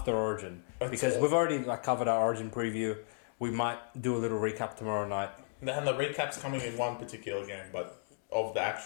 Origin? Because we've already covered our Origin preview. We might do a little recap tomorrow night. And the recap's coming in one particular game, but of the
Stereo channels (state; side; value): silent; right; digital silence